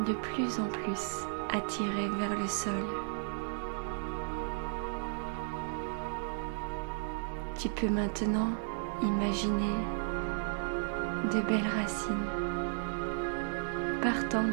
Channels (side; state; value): left; silent; digital silence